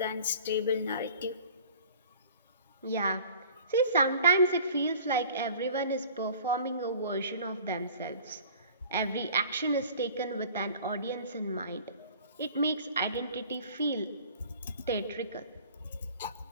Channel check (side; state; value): both; inverted; correlation -0.47